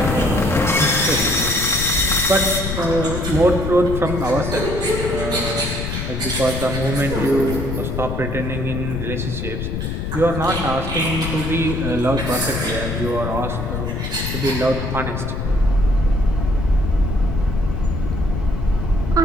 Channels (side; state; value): left; noise; rumble, 4 dB below the sound